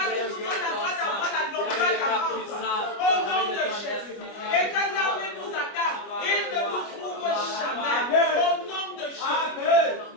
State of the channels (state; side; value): late; right; 25 ms